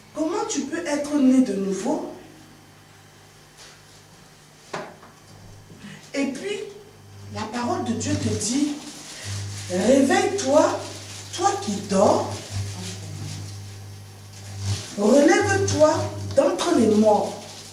comment tu peux être né de nouveau? Et puis, la parole de Dieu te dit, réveille-toi, toi qui dors, relève-toi d'entre les morts.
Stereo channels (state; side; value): identical; both; correlation 1.00